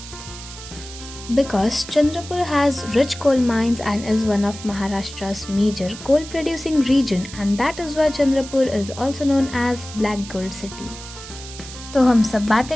Because Chandrapur has rich coal mines and is one of Maharashtra's major coal producing region and that is why Chandrapur is also known as Black Gold City। तो हम सब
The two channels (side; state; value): right; noise; hiss, 14 dB below the sound